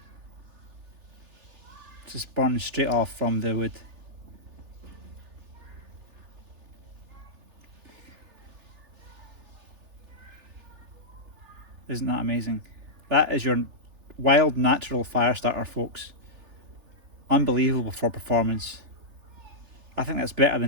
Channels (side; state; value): left; late; 3.4 ms